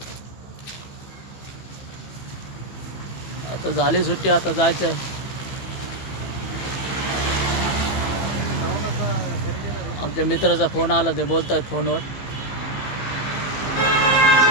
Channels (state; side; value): late; right; 15 ms